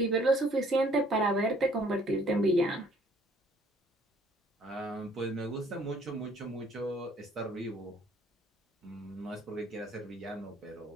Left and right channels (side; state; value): both; normal; correlation 0.60